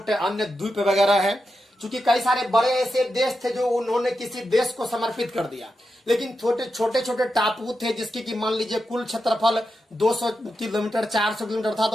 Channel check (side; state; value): both; normal; correlation 0.88